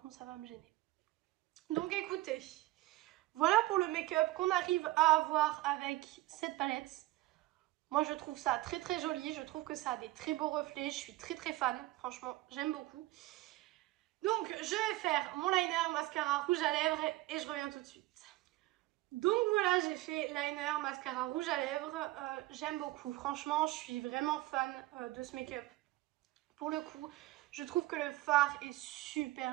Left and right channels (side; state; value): left; quieter; 18.4 dB